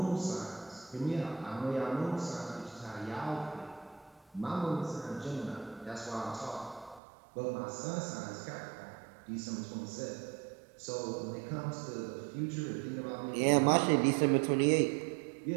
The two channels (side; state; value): left; drops out; at 7.0 s